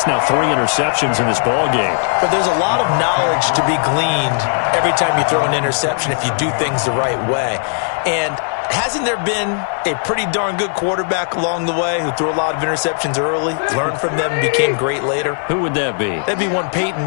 now 3 interceptions in this ball game. But there's a lot of knowledge to be gleaned every time you throw an interception if you do things the right way. And hasn't there been a pretty darn good quarterback along the way who threw a lot of interceptions early, learned from them, and became great later? Who would that be? That'd be one Peyton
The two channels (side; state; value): right; silent; digital silence